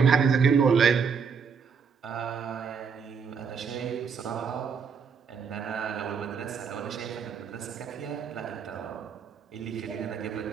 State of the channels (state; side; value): quieter; left; 6.1 dB